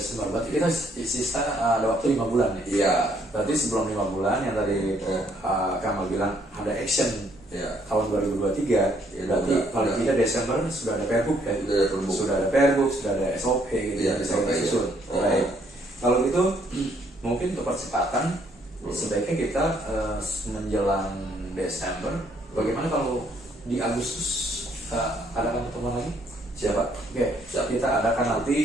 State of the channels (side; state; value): both; normal; correlation 0.68